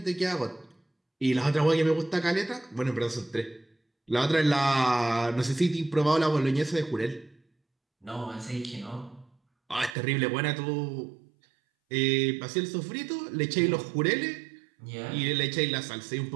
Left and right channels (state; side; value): drops out; left; at 10.0 s